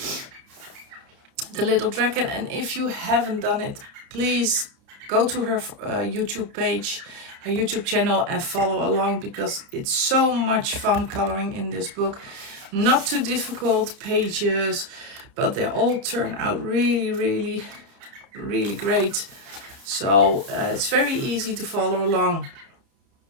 The Little Dragon, and if you haven't done it, please go to her YouTube page, her YouTube channel, and follow along, because it's so much fun coloring in this book. Not too difficult pages, but they all turn out really, really, really great. So it's very easy to follow along,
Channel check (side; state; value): left; late; 30 ms